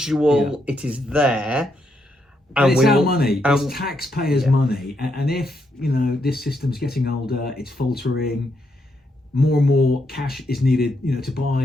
Yeah. It is there. And it's our money. It's taxpayers' money. And if this system's getting older, it's faltering. More and more cash is needed, to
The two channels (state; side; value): normal; both; correlation 0.79